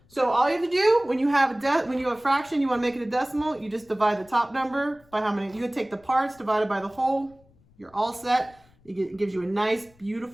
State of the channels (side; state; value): left; noise; rumble, 30 dB below the sound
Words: So all you have to do when you have a fraction, you want to make it a decimal, you just divide the top number by how many. You can take the parts divided by the whole. You're all set. It gives you a nice,